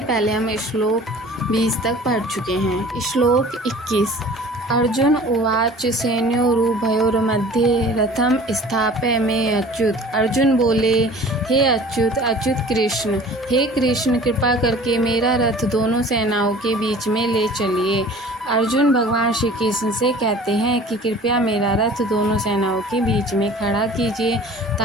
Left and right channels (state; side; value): normal; both; correlation 0.45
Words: हम श्लोक 20 तक पढ़ चुके हैं। श्लोक 21। अर्जुन उवाच सैन्योरुभयोर्मध्ये रथम स्थापय में अच्युत। अर्जुन बोले, हे अच्युत कृष्ण, हे कृष्ण, कृपा करके मेरा रथ दोनों सेनाओं के बीच में ले चलिए। अर्जुन भगवान श्री कृष्ण से कहते हैं कि कृपया मेरा रथ दोनों सेनाओं के बीच में खड़ा कीजिए